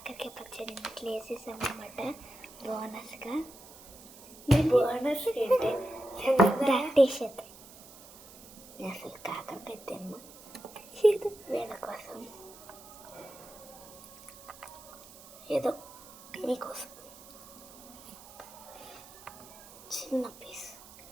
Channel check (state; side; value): noise; right; hiss, 19 dB below the sound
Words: పచ్చడి ఇట్లా వేసేసామన్నమాట బోనస్గా. బోనస్ ఏంటి? ప్రాక్టీస్ చేద్దాం. అసలు కాకరకాయ తిన్నా వీళ్ళ కోసం, ఏదో మీకోసం చిన్న పీస్